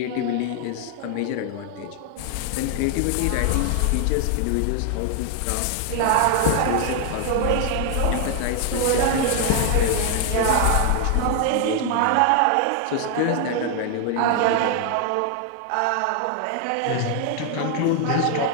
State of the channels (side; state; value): both; different; correlation 0.00